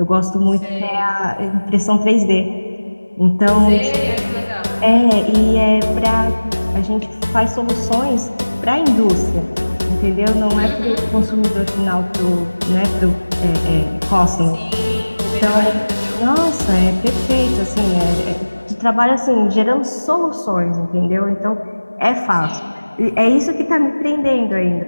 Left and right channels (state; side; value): inverted; both; correlation -1.00